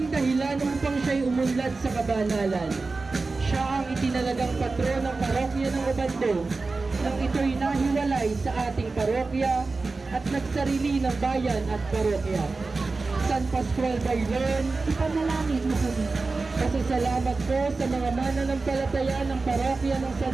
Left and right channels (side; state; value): left; quieter; 3.8 dB